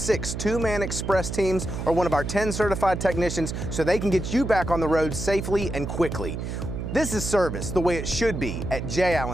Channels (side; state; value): right; noise; hum, 5 dB below the sound